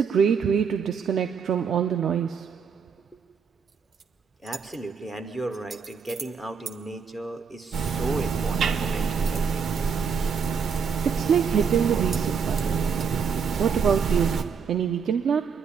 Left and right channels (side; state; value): left; quieter; 6.2 dB